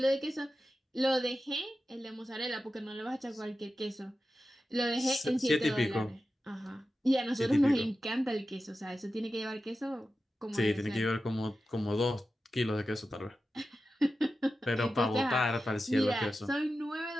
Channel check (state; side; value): normal; both; correlation 0.92